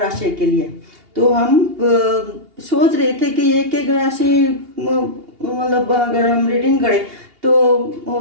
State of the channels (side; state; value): left; late; 2.8 ms